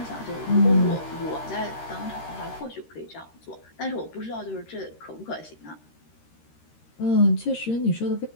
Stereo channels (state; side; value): late; right; 13 ms